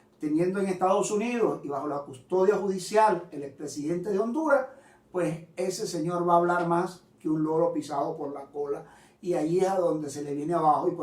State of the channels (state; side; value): identical; both; correlation 1.00